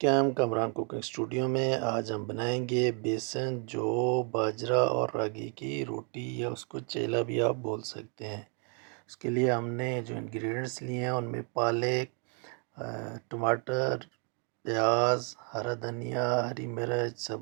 Kamran cooking studio میں آج ہم بنائیں گے بیسن جو باجرہ اور راگی کی روٹی یا اس کو چیلا بھی آپ بول سکتے ہیں۔ اس کے لیے ہم نے جو انگریڈینٹس لیے ہیں ان میں پالک، ٹماٹر، پیاز، ہرا دھنیا، ہری مرچ،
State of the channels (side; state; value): left; quieter; 39.8 dB